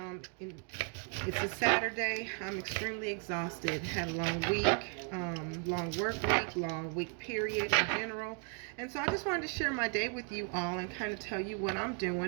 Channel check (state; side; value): quieter; left; 37.6 dB